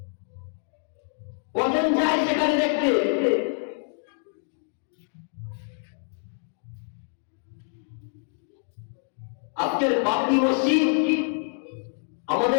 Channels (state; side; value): silent; right; 56 dB below the other